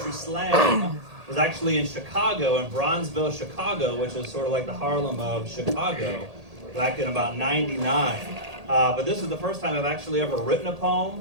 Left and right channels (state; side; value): late; left; 1.8 ms